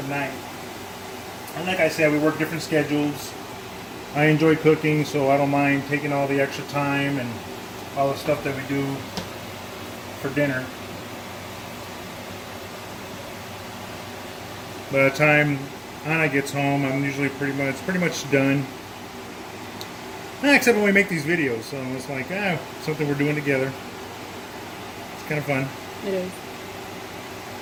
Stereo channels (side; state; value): both; identical; correlation 1.00